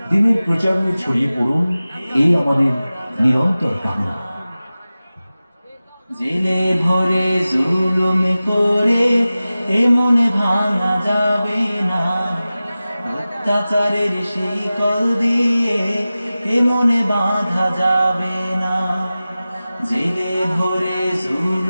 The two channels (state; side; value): inverted; both; correlation -0.96